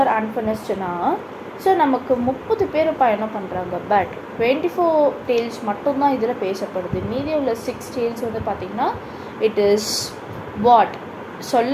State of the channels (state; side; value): identical; both; correlation 1.00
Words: அன்ஃபினிஷ்டுனா ஸோ நமக்கு 30 பேர் பயணம் பண்ணுறாங்க. பட் 24 டேல்ஸ் மட்டும்தான் இதில் பேசப்படுது. மீதி உள்ள 6 டேல்ஸ் வந்து பார்த்திங்கன்னா இட் இஸ்